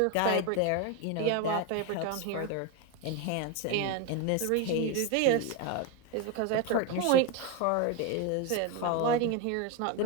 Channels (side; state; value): both; different; correlation 0.02